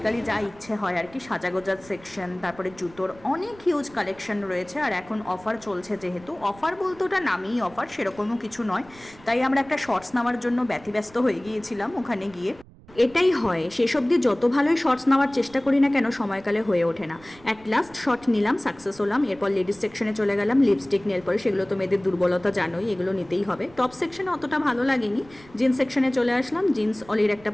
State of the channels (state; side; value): noise; right; rumble, 23 dB below the sound